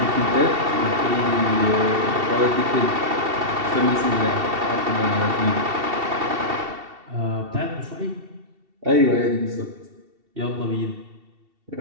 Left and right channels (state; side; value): late; left; 2.7 ms